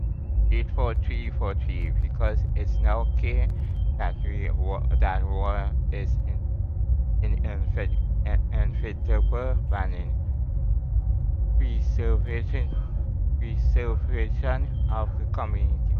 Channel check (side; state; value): both; identical; correlation 1.00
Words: 84343 because it's now clear that that war is inevitable planning. Preservation of the community